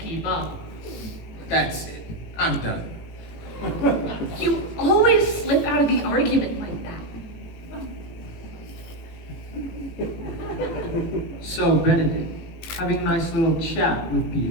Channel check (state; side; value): late; right; 18 ms